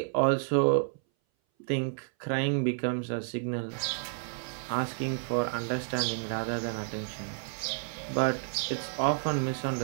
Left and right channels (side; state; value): left; silent; 57 dB below the other